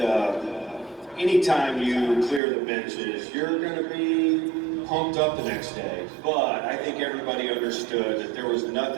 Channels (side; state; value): left; drops out; at 2.4 s